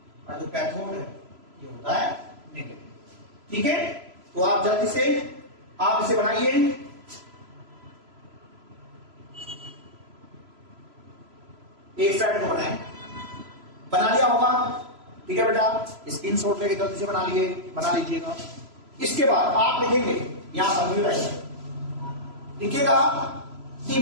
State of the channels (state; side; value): late; left; 3.0 ms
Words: और जो कैथोड है ये होता है नेगेटिव, ठीक है। तो आप जल्दी से आप इसे बनाइए, एक साइड को बनाएं, बना लिया होगा, ठीक है बेटा, स्क्रीनशॉट लेके जल्दी से बना लीजिएगा। इसके बाद आप लिखेंगे यहां पर लिखिएगा the